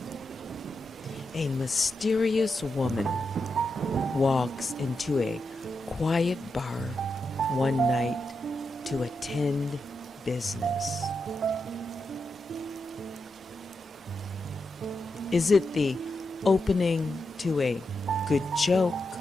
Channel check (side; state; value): both; normal; correlation 0.86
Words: a mysterious woman walks into a quiet bar one night to attend business. Is it the opening to a good joke,